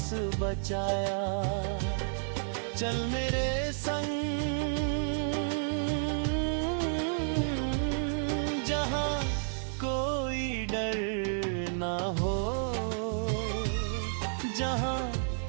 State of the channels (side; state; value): left; silent; digital silence